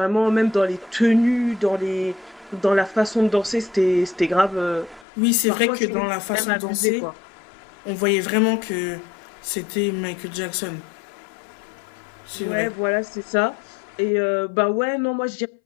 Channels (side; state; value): right; drops out; at 5.1 s